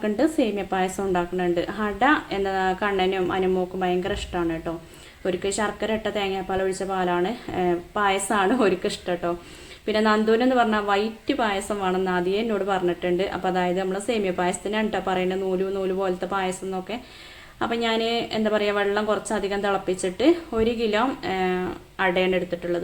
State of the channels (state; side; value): identical; both; correlation 1.00